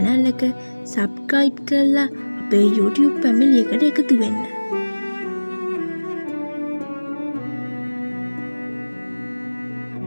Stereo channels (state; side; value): inverted; both; correlation -1.00